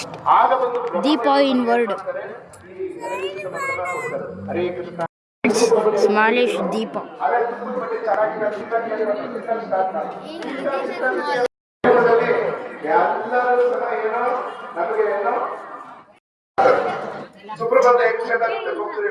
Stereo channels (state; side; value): identical; both; correlation 1.00